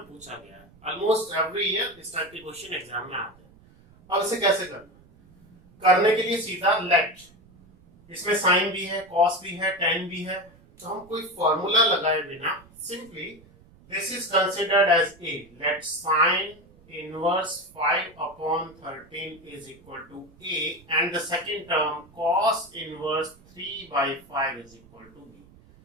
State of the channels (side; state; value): right; noise; rumble, 26 dB below the sound